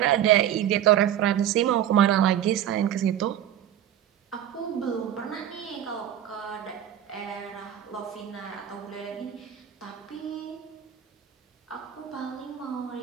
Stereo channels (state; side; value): quieter; left; 10.7 dB